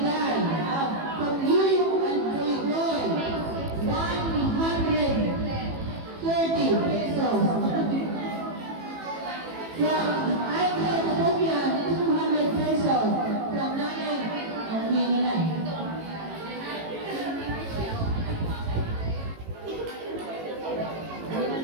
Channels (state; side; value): late; left; 18 ms